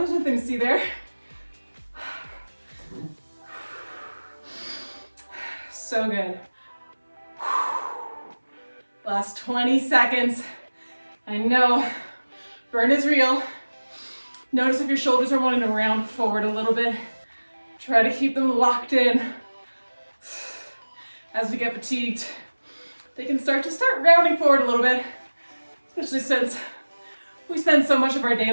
nothing to see there. So good. Last 20 seconds. I know, burn is real. Notice if your shoulders are wanting to round forward a little bit. Try to keep them locked in. As we get fatigued, they can start rounding forward a little bit, especially since we spend so much of our day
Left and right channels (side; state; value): both; inverted; correlation -1.00